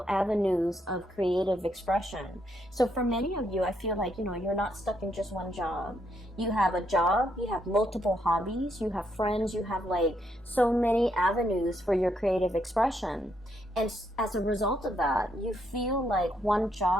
avenues of creative expression. So for many of you, I feel like, you're not stuck in just one job. You have a job, you have multiple hobbies, you have friends, you have like so many avenues for your creative expression. And as a result of that, you feel like one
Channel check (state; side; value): normal; both; correlation 0.75